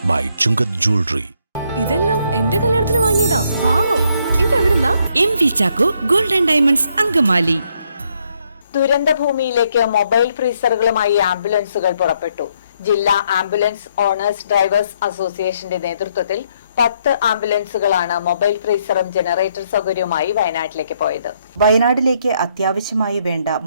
by Chungat Jewelry. ഇതെല്ലാം എന്റെ കല്യാണത്തിന് വാങ്ങിയതാ. വാവ്, ഇതെവിടുന്നാ? MV Chaco Golden Diamonds Angamaly. ദുരന്തഭൂമിയിലേക്ക് മൊബൈൽ ഫ്രീസറുകളുമായി ആംബുലൻസുകൾ പുറപ്പെട്ടു. ജില്ലാ ആംബുലൻസ് ഓണേഴ്സ് ഡ്രൈവേഴ്സ് അസോസിയേഷന്റെ നേതൃത്വത്തിൽ 10 ആംബുലൻസുകളാണ് മൊബൈൽ ഫ്രീസറും ജനറേറ്റർ സൗകര്യവുമായി വയനാട്ടിലേക്ക് പോയത്. വയനാട്ടിലേക്ക് അത്യാവശ്യമായി വേണ്ട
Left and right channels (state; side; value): inverted; both; correlation -0.72